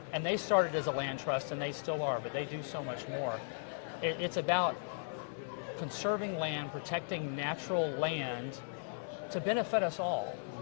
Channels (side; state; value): right; silent; 53 dB below the other